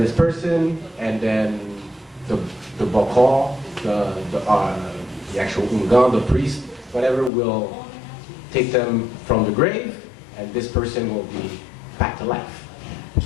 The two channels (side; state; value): right; drops out; at 7.3 s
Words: person, and then the bakal, the actual ungan, the priest, whatever, will take them from the grave, and this person will be back to life.